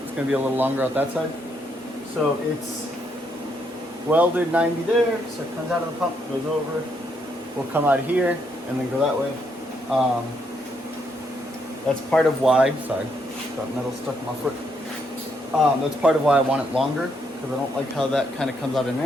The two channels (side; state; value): both; normal; correlation 0.75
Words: going to be a little longer out that side. So it's welded 90 there. So it comes out of the pump, goes over. We'll come out here and then go that way. That's part of why. Sorry, got metal stuck in my foot. That's part of why I want it longer, because I don't like how that kind of comes out at an